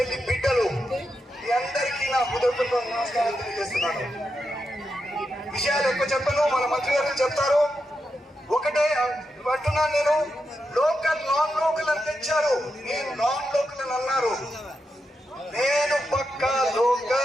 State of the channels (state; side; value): normal; both; correlation 0.86